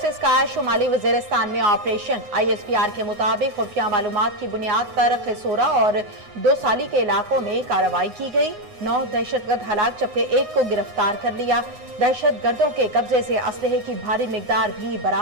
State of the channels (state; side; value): late; left; 9.6 ms